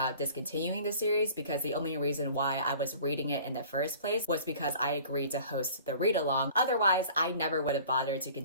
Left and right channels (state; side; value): inverted; both; correlation -0.47